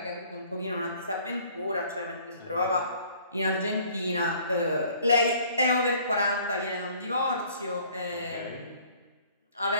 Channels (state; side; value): inverted; both; correlation -0.56